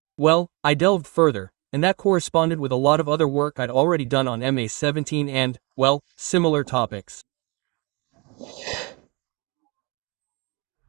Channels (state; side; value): quieter; left; 28.6 dB